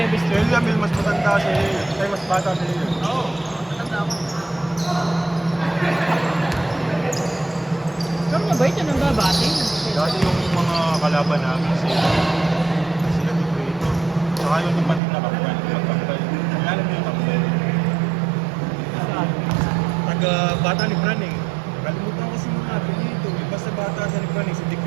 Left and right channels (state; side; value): drops out; left; at 15.0 s